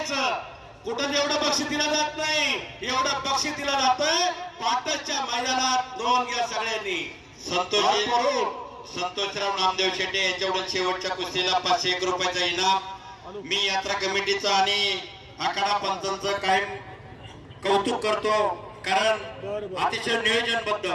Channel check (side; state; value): both; identical; correlation 1.00